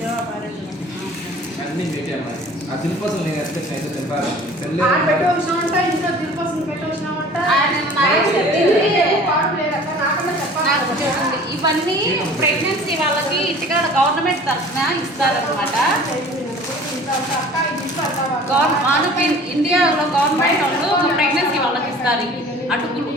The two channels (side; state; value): both; normal; correlation 0.46